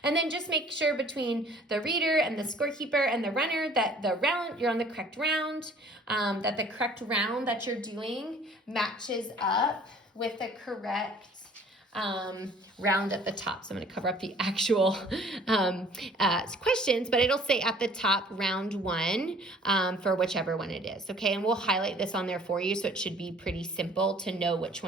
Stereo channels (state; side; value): normal; both; correlation 0.53